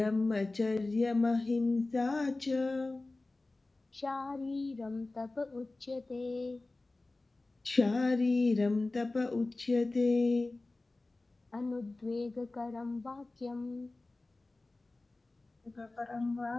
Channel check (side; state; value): right; quieter; 3.1 dB